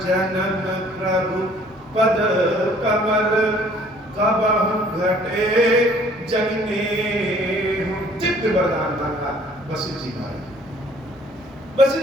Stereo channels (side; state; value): both; normal; correlation 0.57